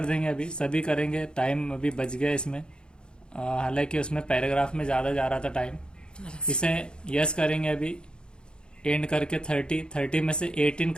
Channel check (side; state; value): right; late; 0.050 ms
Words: देंगे, अभी सभी करेंगे, टाइम अभी बच गया इसमें। हालांकि उसमें पैराग्राफ में ज़्यादा जा रहा था टाइम। इसे यस करेंगे अभी, एंड करके 30 में से 18